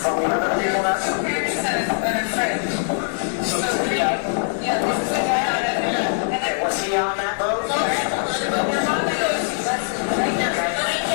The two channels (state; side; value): silent; right; 64 dB below the other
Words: From the other people that's... Okay, was he on that boat?